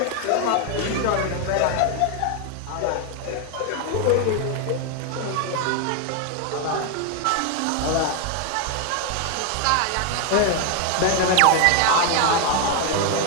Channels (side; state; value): both; different; correlation 0.01